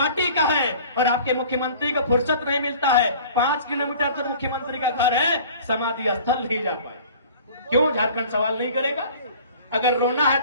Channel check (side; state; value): both; inverted; correlation -0.46